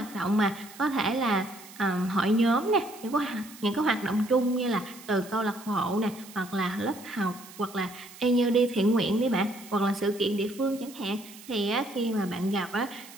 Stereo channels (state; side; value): noise; right; hiss, 18 dB below the sound